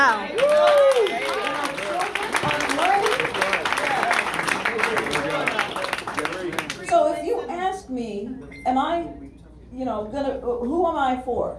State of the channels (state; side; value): identical; both; correlation 1.00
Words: So if you ask me, am I, who am I for?